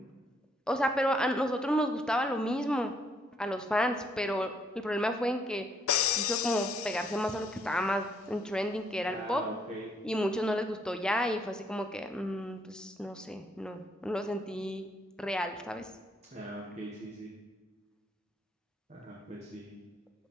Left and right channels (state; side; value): normal; both; correlation 0.69